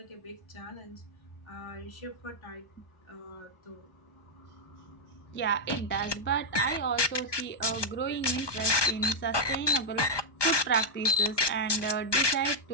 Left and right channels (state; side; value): late; right; 1.2 ms